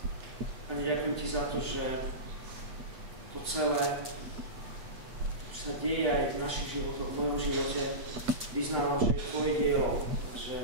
Pane, ďakujem Ti za to, že to celé, čo sa deje aj v našich životoch, v mojom živote, vyznávam, že je Tvoje dielo, že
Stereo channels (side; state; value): left; late; 8.0 ms